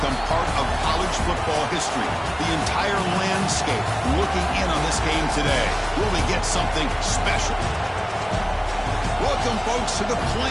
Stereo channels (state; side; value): identical; both; correlation 1.00